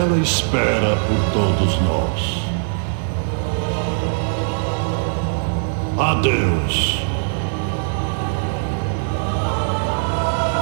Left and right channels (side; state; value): left; silent; digital silence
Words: espera por todos nós. Adeus.